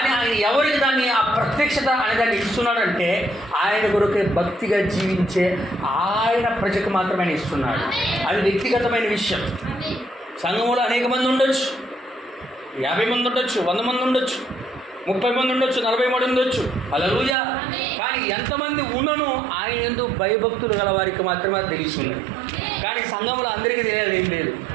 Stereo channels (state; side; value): drops out; left; at 17.4 s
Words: ఆయన ఎవరికి దాన్ని ఆ ప్రత్యక్షత అనే దాన్ని ఇస్తున్నాడంటే, ఆయన కొరకే భక్తిగా జీవించే ఆయన ప్రజకు మాత్రమే ఇస్తున్నాడు. అది వ్యక్తిగతమైన విషయం. సంఘంలో అనేక మంది ఉండొచ్చు, 50 మంది ఉండొచ్చు, 100 మంది ఉండొచ్చు, 30 మంది ఉండొచ్చు, 40 మంది ఉండొచ్చు. హల్లెలూయా. కానీ ఎంతమంది ఉన్నను ఆయన యందు భయభక్తులు గల వారికి మాత్రమే తెలిసి ఉన్నది. కానీ సంఘంలో అందరికీ తెలియదు, ఏం లేదు.